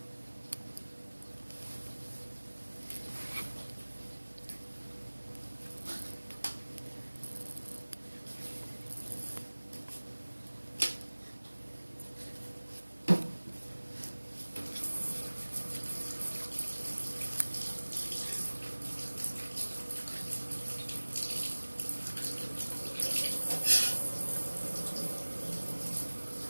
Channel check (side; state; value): both; inverted; correlation -1.00